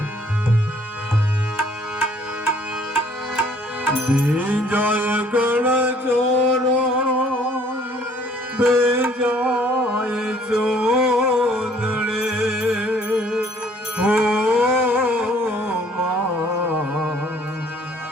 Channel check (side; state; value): both; normal; correlation 0.59